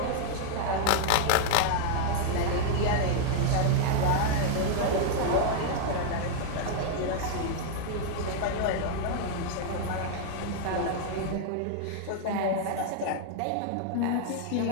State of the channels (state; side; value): different; both; correlation 0.00